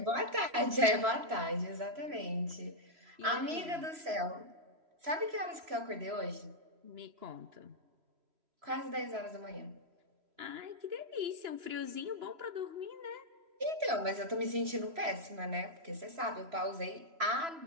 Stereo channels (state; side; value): late; left; 3.0 ms